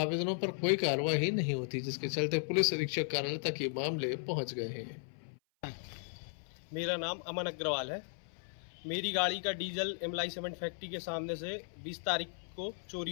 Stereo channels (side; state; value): right; silent; 54 dB below the other